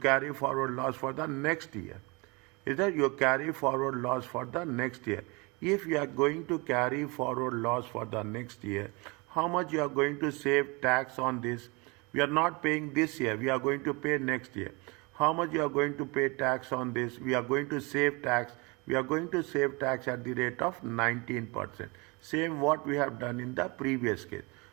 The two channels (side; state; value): left; quieter; 27.9 dB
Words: forward loss for the next year. Is that you carry forward loss for the next year? If you are going to carry forward loss for the next year, how much you are going to save tax on this? We are not paying this year. We are going to pay next year. How much you are going to pay tax on this? We are going to save tax. We are going to save tax at the rate of 19%. Same what we have done in the previous case.